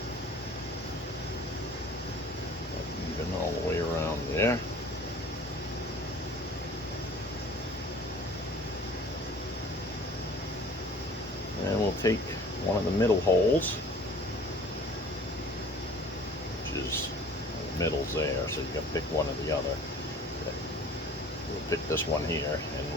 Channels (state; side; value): normal; both; correlation 0.48